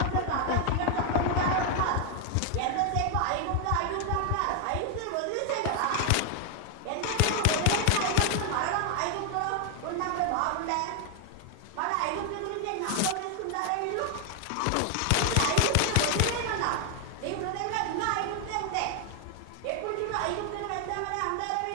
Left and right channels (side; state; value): both; different; correlation 0.00